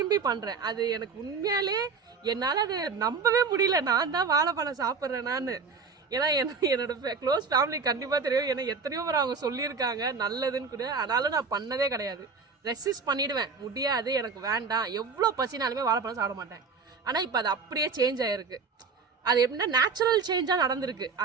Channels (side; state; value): left; quieter; 5.1 dB